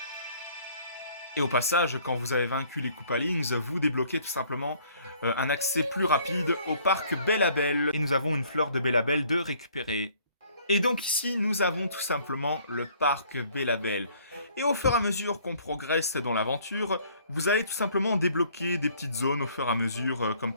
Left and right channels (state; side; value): inverted; both; correlation -0.59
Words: Et au passage, quand vous avez vaincu les Koopalings, vous débloquez tout simplement un accès plus rapide au parc Bellabel. Et nous avons une fleur de Bellabel de récupérer. Et donc ici, nous avons tout simplement le parc Bellabel. Et au fur et à mesure qu'on progresse dans l'aventure, vous allez tout simplement débloquer des petites zones au fur et à mesure, comme